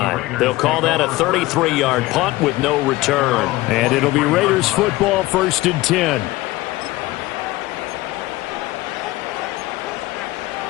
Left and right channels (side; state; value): right; quieter; 18.6 dB